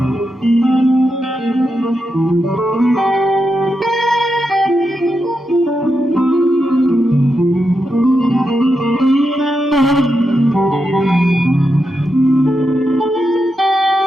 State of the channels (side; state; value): both; normal; correlation 0.86